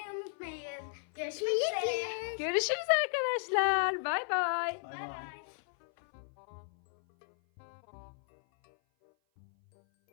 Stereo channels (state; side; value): silent; right; 55 dB below the other